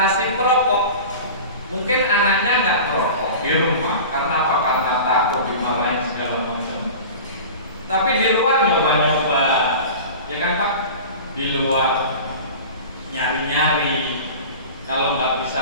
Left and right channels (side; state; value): both; inverted; correlation -0.35